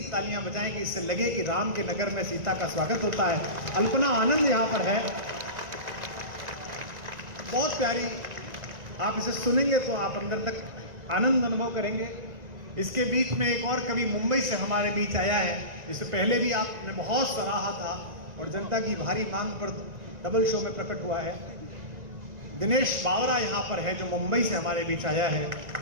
तालियां बजाएंगे, इससे लगे कि राम के नगर में सीता का स्वागत होता है। अल्पना आनंद यहाँ पर है, बहुत प्यारी। आप इसे सुनेंगे तो आप अंदर तक आनंद अनुभव करेंगे। इसके बीच में एक और कवि मुंबई से हमारे बीच आया है, जिसे पहले भी आपने बहुत सराहा था और जनता की भारी मांग पर डबल शो में प्रकट हुआ है। दिनेश बावरा यहाँ पर है, जो मुंबई से हमारे बीच आया है।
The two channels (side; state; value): left; late; 1.9 ms